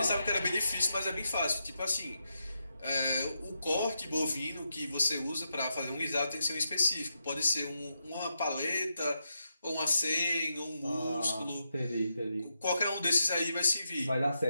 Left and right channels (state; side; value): inverted; both; correlation -0.84